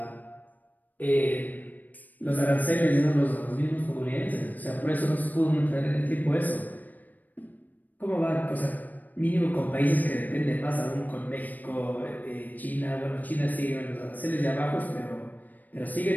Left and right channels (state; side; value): late; right; 0.083 ms